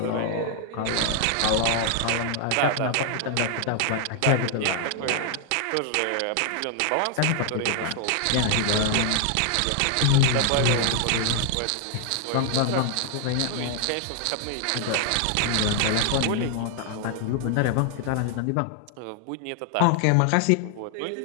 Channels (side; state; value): both; different; correlation 0.00